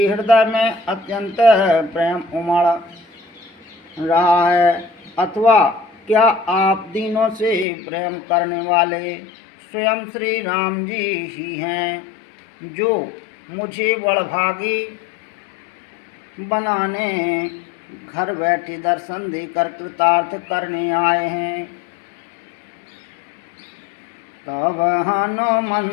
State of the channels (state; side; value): drops out; right; at 7.7 s